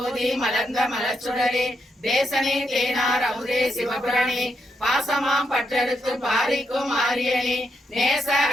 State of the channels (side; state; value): both; normal; correlation 0.81